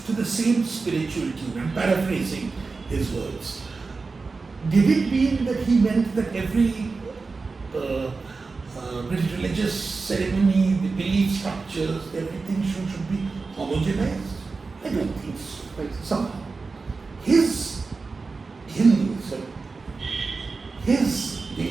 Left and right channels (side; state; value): left; quieter; 4.2 dB